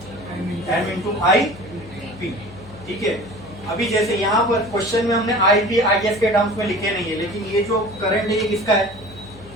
M into I P, ठीक है। अभी जैसे यहाँ पर क्वेश्चन में हमने I P I S के टर्म्स में लिखे नहीं है, लेकिन ये जो करंट है ये किसका है?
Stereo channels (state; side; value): noise; left; hum, 19 dB below the sound